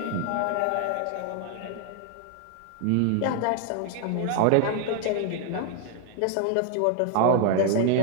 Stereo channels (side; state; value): both; different; correlation 0.00